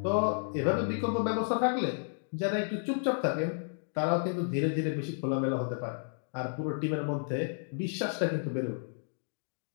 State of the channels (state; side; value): silent; right; digital silence